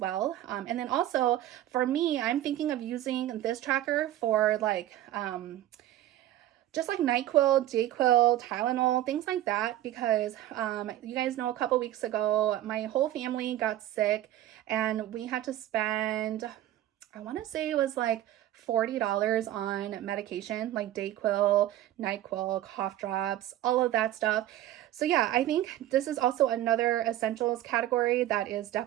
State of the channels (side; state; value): left; quieter; 13.4 dB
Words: And then also for me, I'm thinking of using this tracker for like just like NyQuil, Dayquil, Tylenol, things like that, because you guys know a couple weeks ago, my whole family got sick and we had to spend, I want to say it was like $40 on medication, like Dayquil, NyQuil, cough drops, all of that stuff. So yeah, I think this is also another essentials category that is